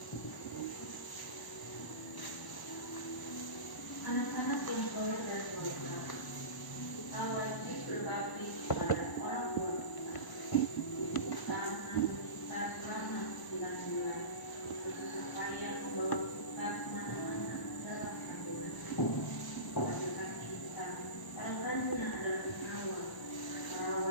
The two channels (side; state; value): right; late; 1.0 ms